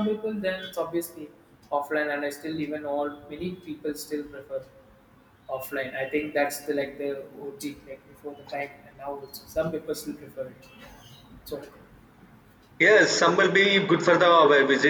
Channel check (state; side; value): identical; both; correlation 1.00